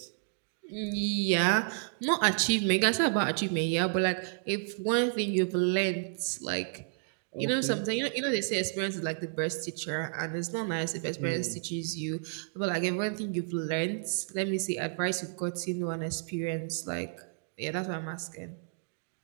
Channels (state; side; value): silent; left; digital silence